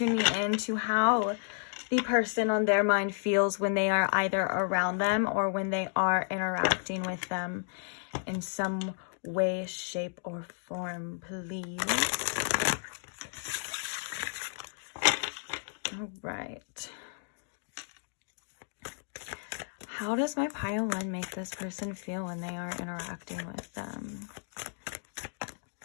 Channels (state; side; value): silent; right; digital silence